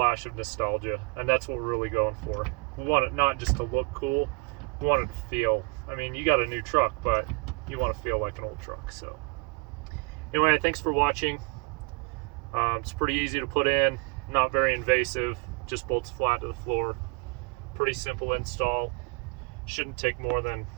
of nostalgia, and that's what we're really going for. We want it not just to look cool, we want it to feel, I mean, you got a new truck, but you want to feel like an old truck. So anyway, thanks for watching. It's pretty easy to put in, not very invasive, just bolts flat to the floor. Pretty simple install. Shouldn't take more than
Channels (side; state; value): left; quieter; 32.0 dB